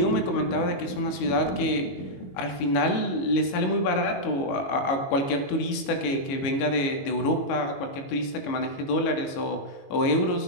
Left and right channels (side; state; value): right; late; 22 ms